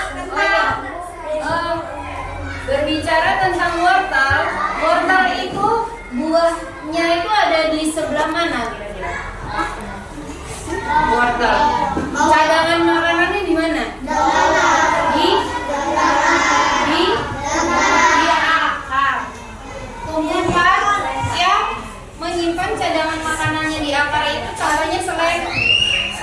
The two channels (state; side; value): identical; both; correlation 1.00